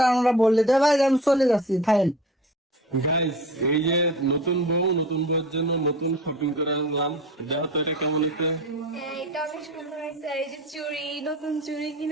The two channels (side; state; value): both; normal; correlation 0.37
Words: আমরা বললে তো ভাই আমি চলে যাচ্ছি ফাইন। গাইস, এই যে নতুন বউয়ের জন্য নতুন শপিং করে আনলাম। দেখো তো এটা কেমন হচ্ছে। এটা অনেক সুন্দর হয়েছে। এই যে চুড়ি, নতুন চুড়ি